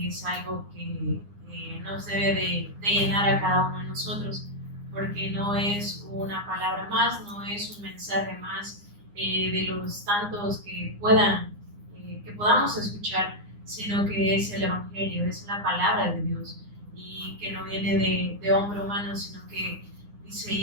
es algo que nos debe de llenar a cada uno de nosotros, porque no es una palabra más, no es un mensaje más de los tantos que podamos escuchar, sino que es el Evangelio, es la palabra de Dios, y que no viene de hombre humano, sino que dice,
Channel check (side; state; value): left; late; 9.7 ms